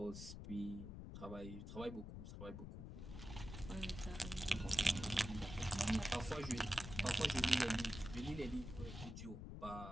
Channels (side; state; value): left; noise; rumble, 8 dB below the sound